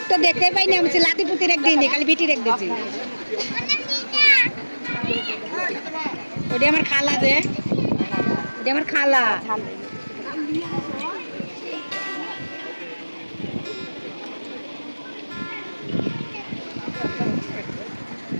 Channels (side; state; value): both; inverted; correlation -1.00